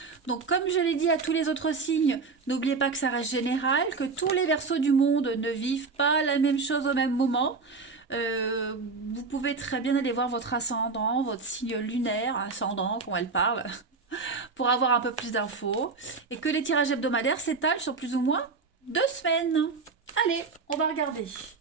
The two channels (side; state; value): left; quieter; 4.4 dB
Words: Donc comme je l'ai dit à tous les autres signes, n'oubliez pas que ça reste général, que tous les Verseaux du monde ne vivent pas la même chose au même moment. Vous pouvez très bien aller voir votre ascendant, votre signe lunaire, ascendant, quand elle parle, pour avoir un peu plus d'infos. Et que les tirages hebdomadaires s'étalent sur plus ou moins 2 semaines. Allez, on va regarder.